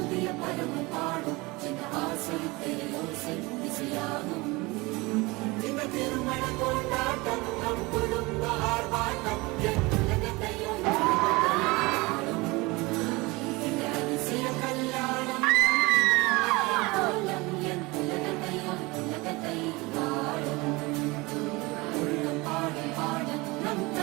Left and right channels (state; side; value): quieter; left; 23.7 dB